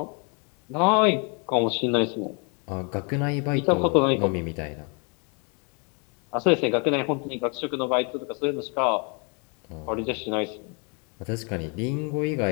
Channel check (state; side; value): quieter; right; 35.8 dB